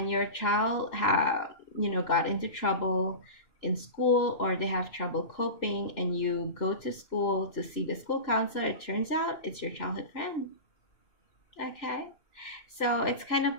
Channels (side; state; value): right; late; 2.9 ms